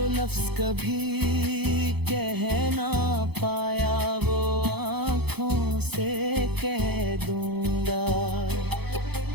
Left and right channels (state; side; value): late; left; 0.98 ms